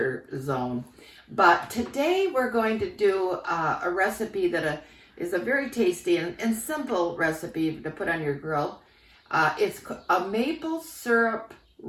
zone. But today we're going to do a recipe that is a very tasty and simple recipe to put on your grill. It's a maple syrup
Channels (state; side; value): identical; both; correlation 1.00